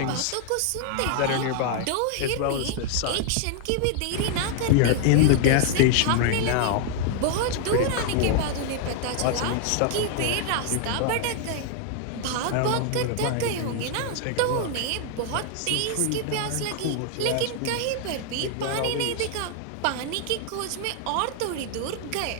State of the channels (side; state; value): both; different; correlation 0.00